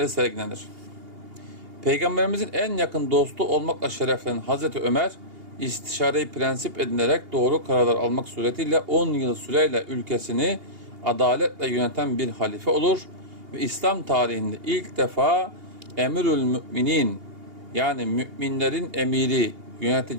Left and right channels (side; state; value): left; late; 2.8 ms